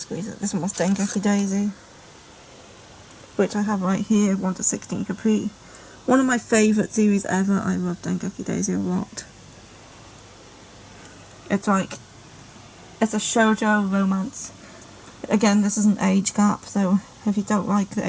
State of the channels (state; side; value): identical; both; correlation 1.00